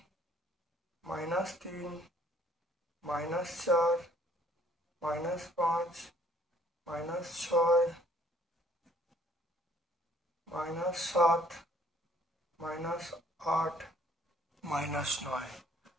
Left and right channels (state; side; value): normal; both; correlation 0.61